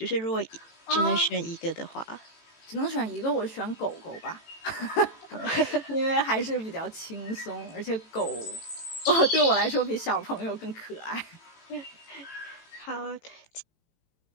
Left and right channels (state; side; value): late; right; 18 ms